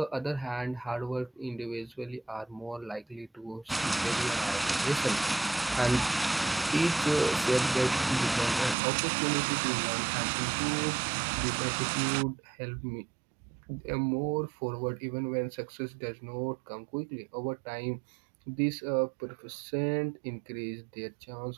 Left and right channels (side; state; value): left; drops out; at 8.8 s